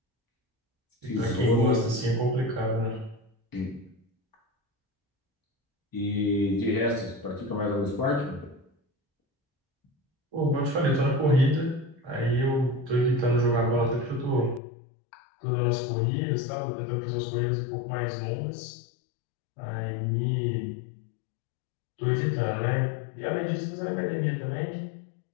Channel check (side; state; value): right; drops out; at 14.6 s